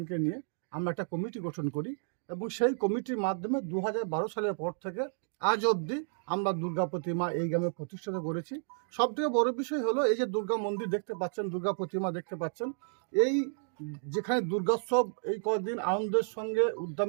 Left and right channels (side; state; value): left; silent; digital silence